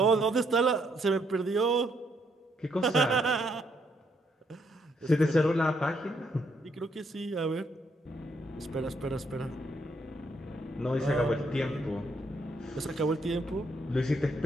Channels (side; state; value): both; normal; correlation 0.73